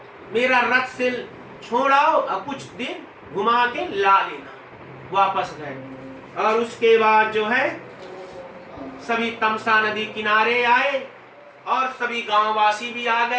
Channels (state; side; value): identical; both; correlation 1.00